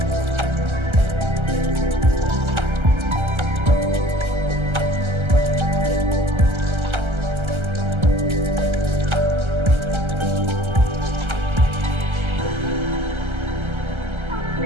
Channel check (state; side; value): late; left; 1.3 ms